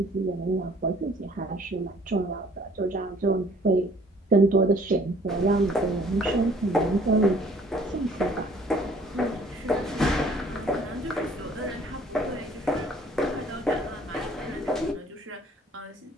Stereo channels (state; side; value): normal; both; correlation 0.56